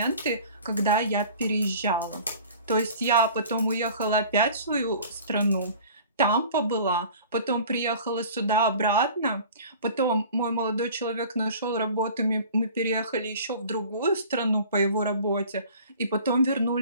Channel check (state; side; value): inverted; both; correlation -0.45